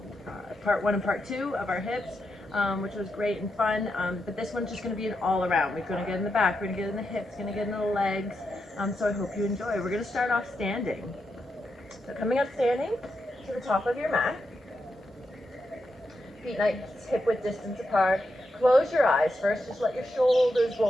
part one and part two of our hips, which was great and fun. But this one's just going to be an all-around. We're going to get in the back, we're going to get in the hips, going to get in the legs. So I hope you enjoy. We're going to start off standing. So coming up standing to the top of your mat. Feet nice hip width distance apart. Close your eyes first, just let your shoulders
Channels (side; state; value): both; normal; correlation 0.85